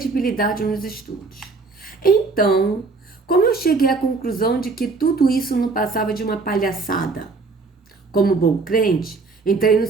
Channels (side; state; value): left; quieter; 4.0 dB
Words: nos estudos. Então, como eu cheguei à conclusão de que tudo isso não passava de uma palhaçada? Como bom crente, entrei no